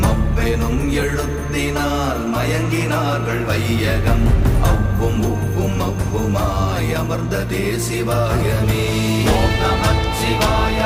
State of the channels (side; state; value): both; identical; correlation 1.00